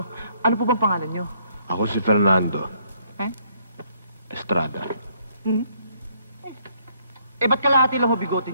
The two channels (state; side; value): inverted; both; correlation -0.68